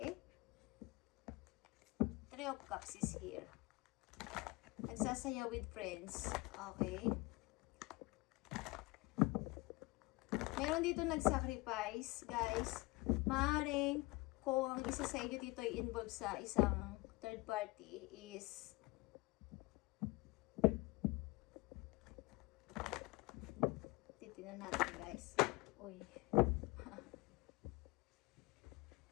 Three of Cups is here. Nagsasaya with friends. Okay? Meron dito nag-sacrifice, guys. Maaaring kung ang isa sa inyo dito ay involved sa isang third party is titignan natin, guys. Uy.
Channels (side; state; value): right; quieter; 23.1 dB